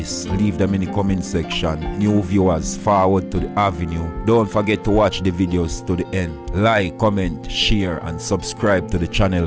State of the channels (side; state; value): both; identical; correlation 1.00